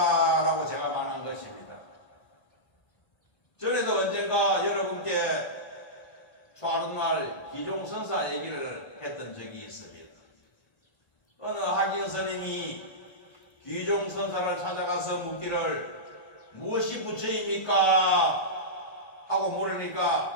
제가 말한 것입니다. 전에도 언젠가 여러분께 초하룻날 기종선사 얘기를 했던 적이 있습니다. 어느 학인 스님이 기종선사를 찾아가서 묻기를 무엇이 부처입니까? 하고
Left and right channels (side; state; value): right; late; 1.4 ms